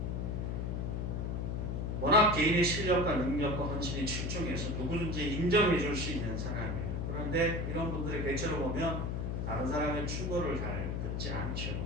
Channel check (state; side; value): noise; left; hum, 1 dB below the sound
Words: 워낙 개인의 실력과 능력과 헌신이 출중해서 누구든지 인정해 줄 수 있는 사람이에요. 그런데 이런 분들의 대체로 보면 다른 사람의 충고를 잘 듣지 않죠.